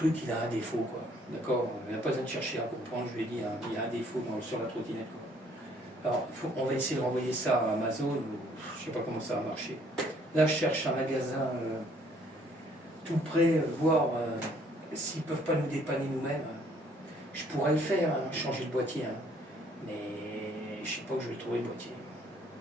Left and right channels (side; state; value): both; normal; correlation 0.62